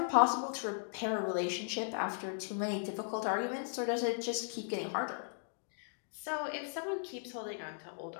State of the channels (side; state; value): right; silent; digital silence